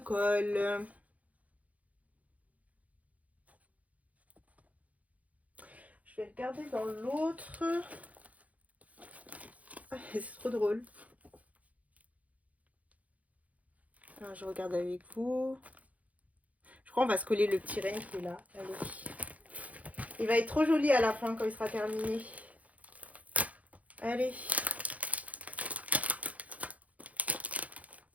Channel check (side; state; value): left; late; 0.070 ms